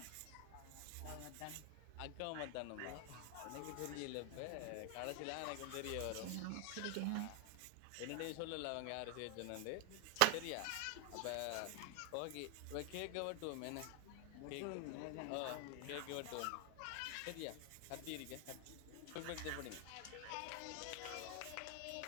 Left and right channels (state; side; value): different; both; correlation 0.00